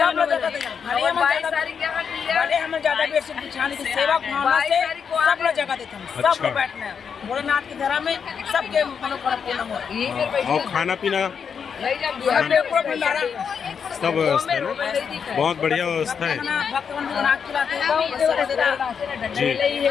लोग 22 तारीख के हम ज्यादा बेर से बिछाने की सेवा भावना से सब लोग जगह देते हैं। सब लोग बैठना है भोलेनाथ के घर में सबके मनोकामना पूर्ण हो। और खाना पीना सब व्यवस्था है ना? बहुत बढ़िया व्यवस्था है जी।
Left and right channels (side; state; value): right; quieter; 6.7 dB